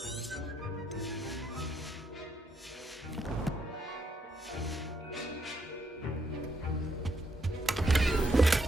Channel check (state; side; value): normal; both; correlation 0.76